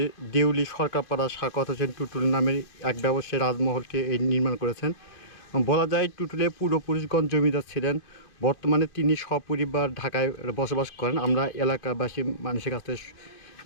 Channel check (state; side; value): late; right; 2.6 ms